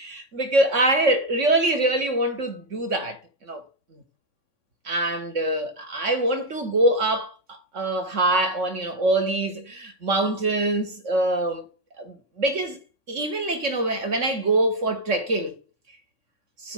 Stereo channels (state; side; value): late; left; 3.6 ms